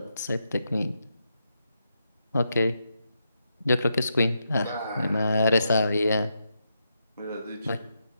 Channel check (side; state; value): both; inverted; correlation -0.83